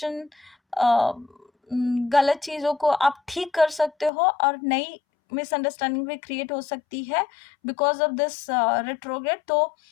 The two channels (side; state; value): right; drops out; at 4.1 s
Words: गलत चीज़ों को आप ठीक कर सकते हो और नई मिसअंडरस्टैंडिंग भी क्रिएट हो सकती है बिकॉज ऑफ दिस रेट्रोग्रेड। तो